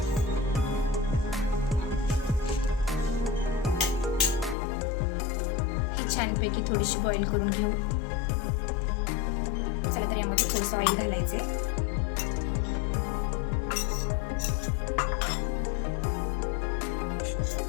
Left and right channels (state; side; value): drops out; right; at 4.5 s